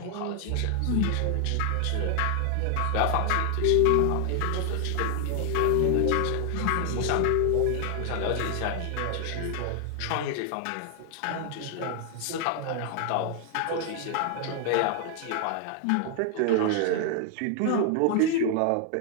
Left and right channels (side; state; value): both; different; correlation 0.00